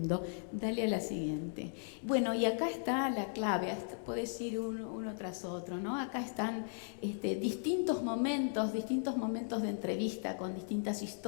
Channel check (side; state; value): right; silent; digital silence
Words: Dale a la siguiente. Bueno, y acá está la clave, podés ir uno tras otro, ¿no? Acá están distintos momentos de entrevista con distintas